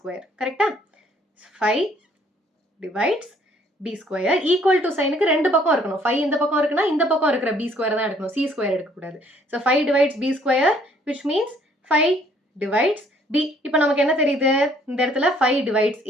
கரெக்ட்டா 5 divides b square equal to சைனுக்கு ரெண்டு பக்கம் இருக்கணும் 5 இந்த பக்கம் இருக்குனா இந்த பக்கம் இருக்கிற b square தான் எடுக்கணும் c square எடுக்க கூடாது. so 5 divides b square which means 5 divides b. இப்போ நமக்கு என்ன தெரியுது இந்த இடத்துல 5 divides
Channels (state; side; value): normal; both; correlation 0.62